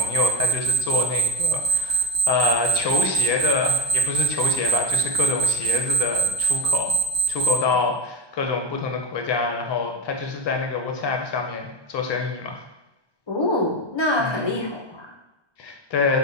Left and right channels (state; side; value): late; right; 1.2 ms